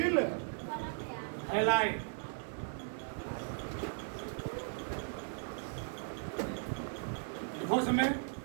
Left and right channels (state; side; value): silent; left; digital silence